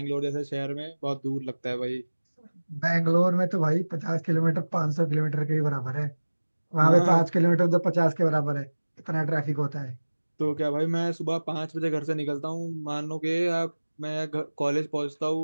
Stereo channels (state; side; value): inverted; both; correlation -1.00